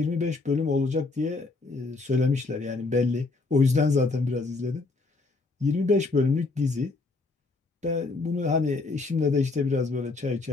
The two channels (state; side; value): quieter; right; 3.6 dB